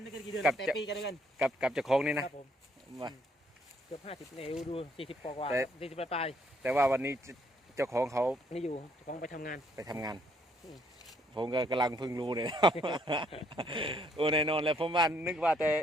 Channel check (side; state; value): both; normal; correlation 0.68